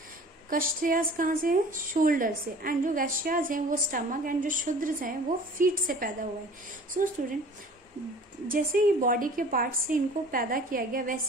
क्षत्रियास कहाँ से है, शोल्डर से। एंड जो वैश्यास हैं वो स्टमक, एंड जो शूद्र हैं वो फीट से पैदा हुए। सो स्टूडेंट, जैसे ही बॉडी के पार्ट से इनको पैदा किया गया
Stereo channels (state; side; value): normal; both; correlation 0.46